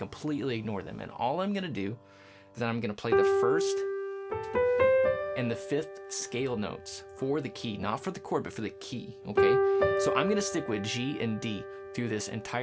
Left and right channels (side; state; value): both; identical; correlation 1.00